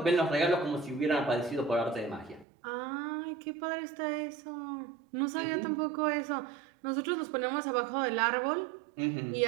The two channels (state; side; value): drops out; left; at 2.5 s